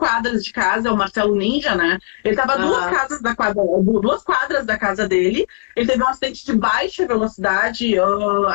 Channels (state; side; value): silent; right; digital silence